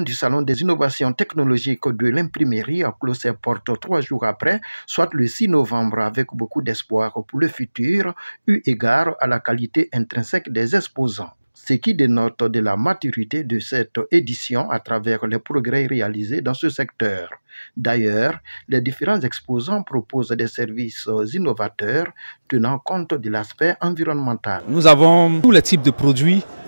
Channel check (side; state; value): both; inverted; correlation -1.00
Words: du Salon des innovations technologiques de l'imprimerie a clos ses portes 3 jours après, soit le 6 novembre, avec beaucoup d'espoir pour le futur, eu égard à la qualité intrinsèque des exposants. Ce qui dénote de la maturité de cette édition à travers les progrès réalisés dans ce secteur. D'ailleurs, les différents exposants proposent des services innovateurs tenant compte de l'aspect environnemental. Nous avons tous les types de produits